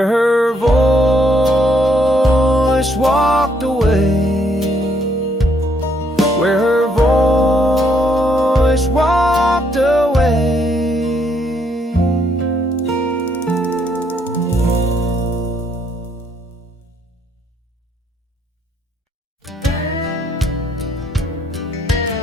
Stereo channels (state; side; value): normal; both; correlation 0.71